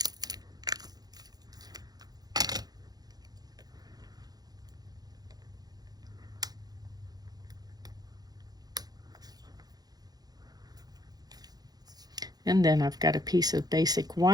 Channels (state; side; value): late; left; 0.19 ms